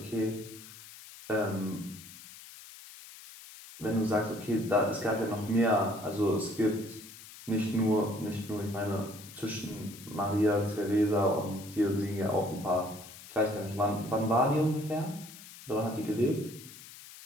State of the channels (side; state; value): left; noise; hiss, 17 dB below the sound